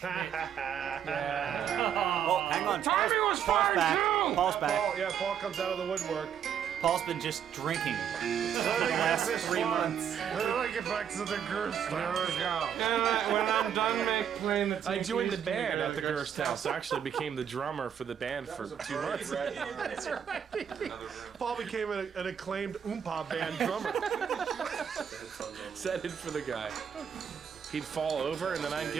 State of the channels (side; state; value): left; quieter; 8.6 dB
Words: Oh, hang on. Timing was Paul's fine back. too. Paul's back. Paul, yeah, Paul comes out of the woodwork. Paul's been just drinking for the last 3 months. Let me get back to the Gerst. There we go. When I'm done playing the I joined the band at the Gerst house. I actually became the drummer for the band for 2 months. That's right. Paul became an acclaimed Oompa band drummer. Set in for the guy. He'd fall over and then I'd